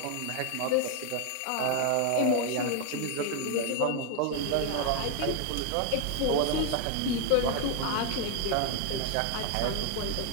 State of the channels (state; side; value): different; both; correlation 0.00